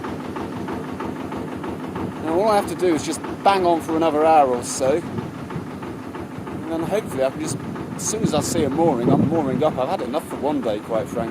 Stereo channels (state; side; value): identical; both; correlation 1.00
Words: Now all I have to do is just bang on for another hour or so, and then hopefully I can just, as soon as I see a mooring, I'm mooring up. I've had enough for one day, quite